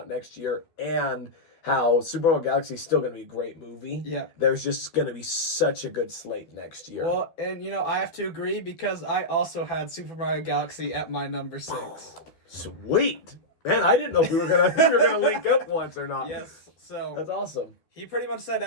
next year, and how Super Mario Galaxy is still going to be a great movie. Yeah. There's just going to be such a good slate next year. Well, and, I have to agree because I also had Super Mario Galaxy at my number 6. Sweet. Man, I didn't know if we were going to link up once or not. Yes. So that's awesome. He pretty much said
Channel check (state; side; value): late; right; 12 ms